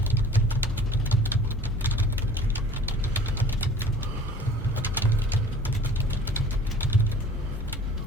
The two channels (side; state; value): both; normal; correlation 0.48